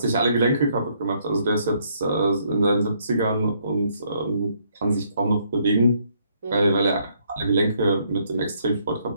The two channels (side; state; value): both; inverted; correlation -0.70